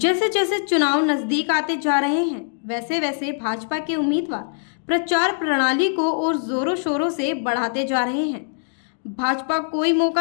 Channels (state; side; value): silent; right; digital silence